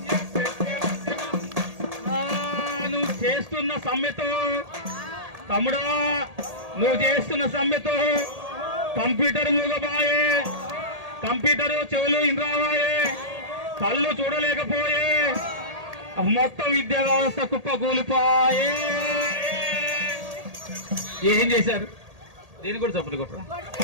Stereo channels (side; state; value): left; late; 1.8 ms